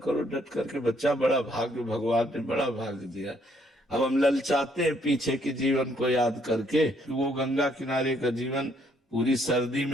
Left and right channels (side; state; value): both; normal; correlation 0.69